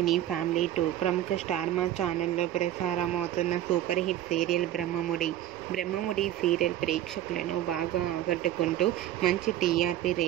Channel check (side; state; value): left; quieter; 12.5 dB